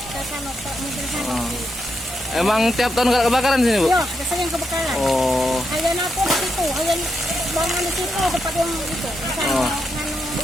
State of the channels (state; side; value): normal; both; correlation 0.82